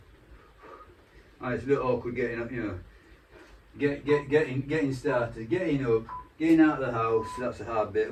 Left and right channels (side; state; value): both; identical; correlation 1.00